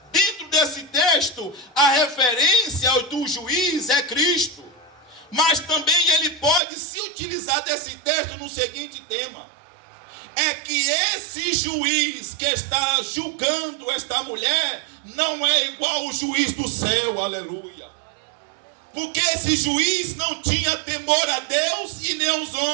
dentro desse texto, a referência do juiz é Cristo, mas também ele pode se utilizar desse texto no seguinte tema. É que esse juiz que está julgando esta mulher não é igual ao juiz do céu, aleluia. Porque esse juiz não tinha temor a Deus e nem aos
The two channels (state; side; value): drops out; left; at 6.6 s